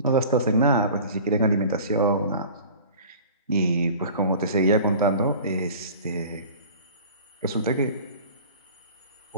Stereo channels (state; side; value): inverted; both; correlation -0.41